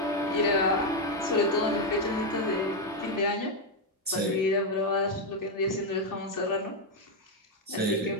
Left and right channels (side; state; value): both; normal; correlation 0.03